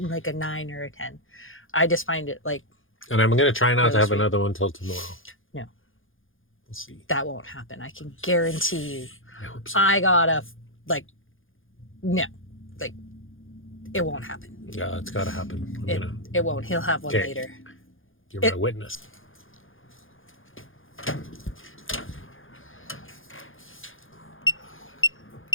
9 or a 10. I just find it like And I'm going to try not Really to have sweet. another one till tomorrow. No. We'll see. that won't happen. I can guarantee you. I hope so. I gotta no, like it won't happen. Yeah, it's got to happen. I'm going to... It won't. He'll have one Okay. later. You're my witness.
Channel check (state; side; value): late; right; 0.58 ms